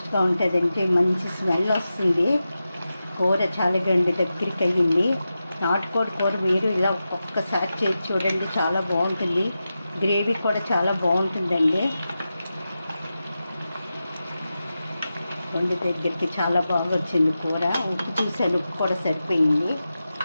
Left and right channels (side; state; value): both; inverted; correlation -0.92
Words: ఉంటుందండి, మంచి స్మెల్ వస్తుంది. కూర చాలా దగ్గరికి అయ్యింది. నాటుకోడి కూర మీరు ఇలా ఒక్కసారి చేసి చూడండి, చాలా బాగుంటుంది. గ్రేవీ కూడా చాలా బాగుంటుందండి. వండి దగ్గరికి చాలా బాగా వచ్చింది కూర. ఉప్పు చూసాను, ఉప్పు కూడా సరిపోయింది.